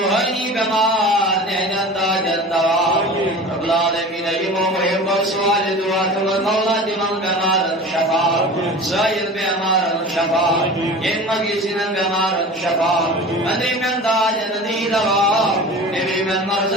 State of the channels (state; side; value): normal; both; correlation 0.36